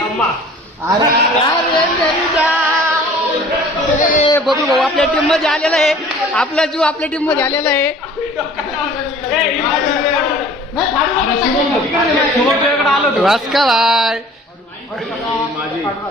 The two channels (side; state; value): both; normal; correlation 0.48